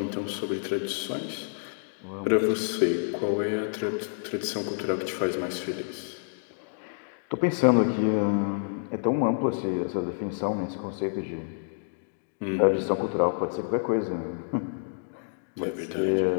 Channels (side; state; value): right; silent; digital silence